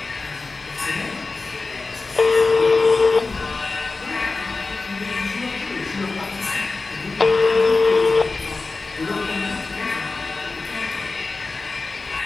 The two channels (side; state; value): right; quieter; 3.8 dB